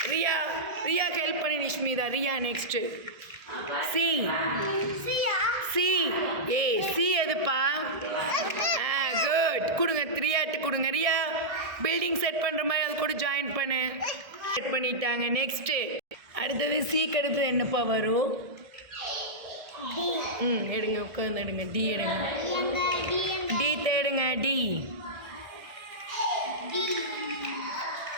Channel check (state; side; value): late; left; 1.6 ms